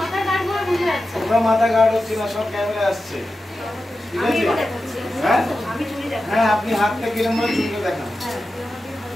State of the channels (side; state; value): both; normal; correlation 0.92